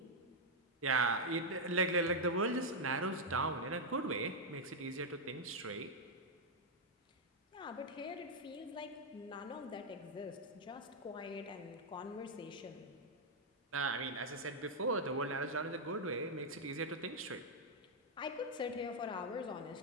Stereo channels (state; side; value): normal; both; correlation -0.01